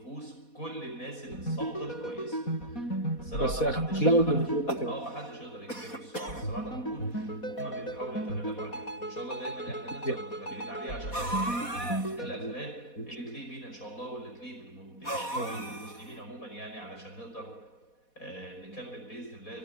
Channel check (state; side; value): late; right; 4.1 ms